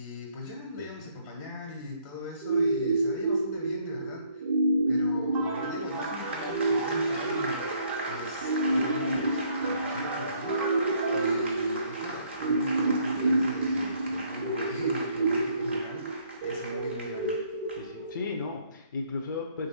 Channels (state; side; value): inverted; both; correlation -0.65